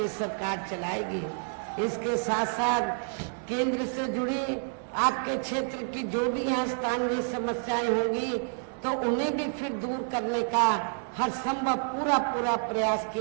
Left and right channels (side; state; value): left; silent; 59 dB below the other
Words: सरकार चलाएगी। इसके साथ साथ केंद्र से जुड़ी आपके क्षेत्र की जो भी यहाँ स्थानीय समस्याएं होंगी तो उन्हें भी फिर दूर करने का हर संभव पूरा प्रयास